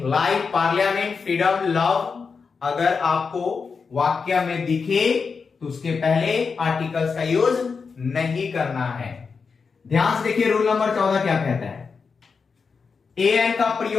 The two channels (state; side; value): quieter; right; 5.2 dB